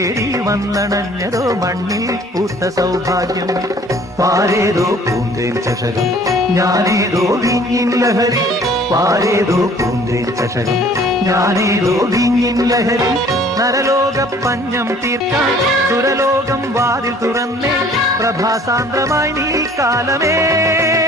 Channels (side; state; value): both; normal; correlation 0.54